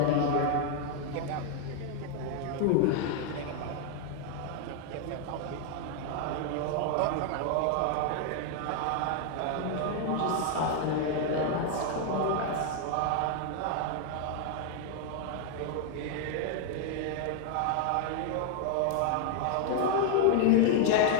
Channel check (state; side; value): different; both; correlation 0.00